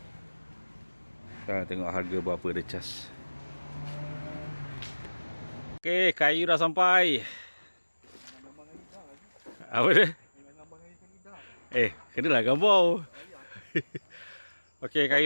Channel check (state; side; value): inverted; both; correlation -1.00